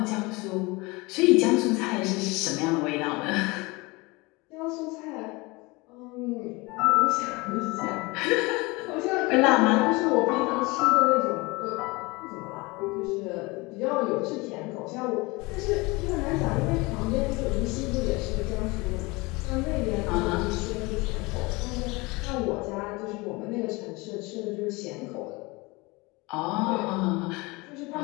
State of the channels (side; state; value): right; quieter; 24.5 dB